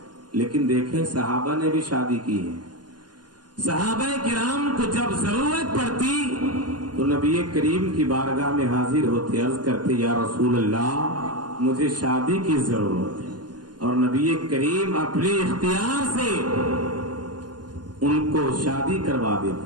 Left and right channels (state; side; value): late; left; 0.70 ms